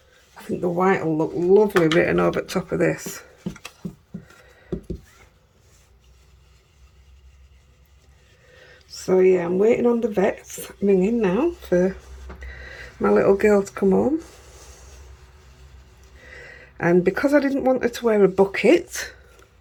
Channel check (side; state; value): both; identical; correlation 1.00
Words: I think the white will look lovely written over the top of this. So yeah, I'm waiting on the vet's ringing now for my little girl to come home. And because I didn't want her to wear a bucket